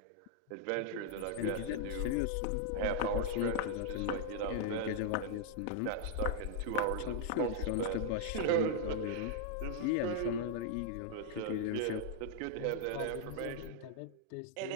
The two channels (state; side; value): different; both; correlation -0.01